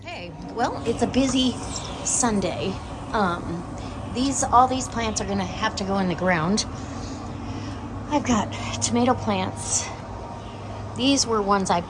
Hey, well, it's a busy Sunday. All these plants are gonna have to go in the ground. I've got tomato plants. These were ones I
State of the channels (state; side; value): identical; both; correlation 1.00